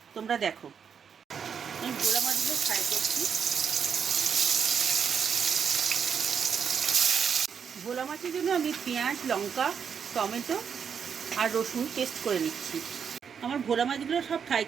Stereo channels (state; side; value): quieter; left; 7.1 dB